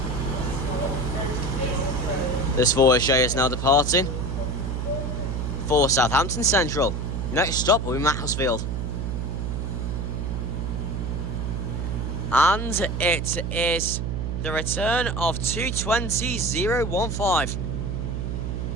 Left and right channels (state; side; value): noise; right; hum, 2 dB below the sound